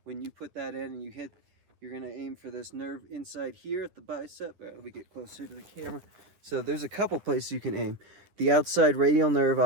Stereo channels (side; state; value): left; late; 10 ms